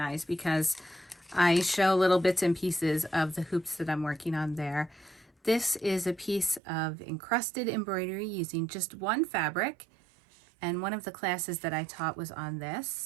because I show little bits and pieces of the hoops that I'm working on there. This is a piece of encrusted embroidery using just one fabric, and one of the classes that I taught was on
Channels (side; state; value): left; drops out; at 6.6 s